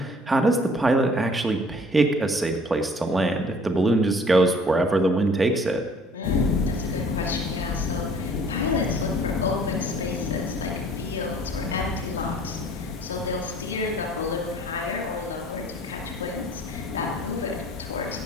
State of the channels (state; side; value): normal; both; correlation 0.53